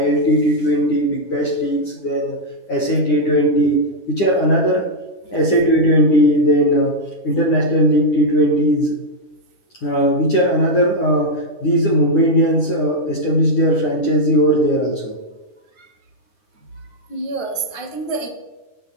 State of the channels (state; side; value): late; right; 9.9 ms